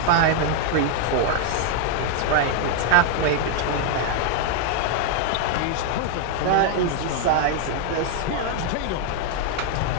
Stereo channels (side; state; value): both; different; correlation 0.00